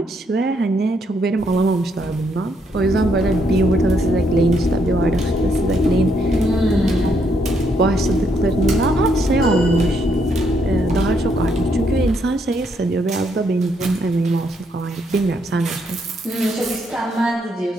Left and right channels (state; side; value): normal; both; correlation 0.74